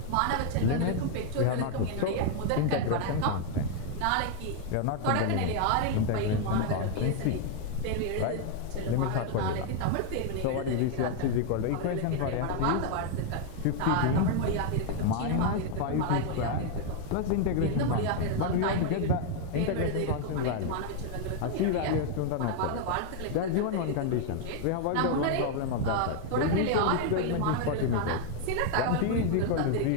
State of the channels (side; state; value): both; different; correlation 0.00